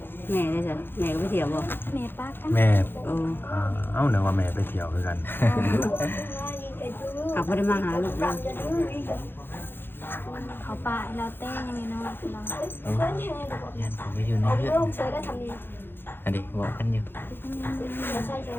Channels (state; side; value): late; right; 0.10 ms